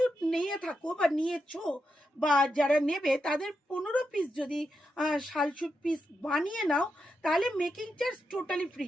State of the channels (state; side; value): normal; both; correlation 0.86